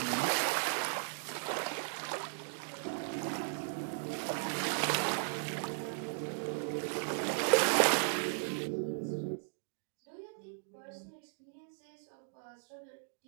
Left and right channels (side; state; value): left; silent; digital silence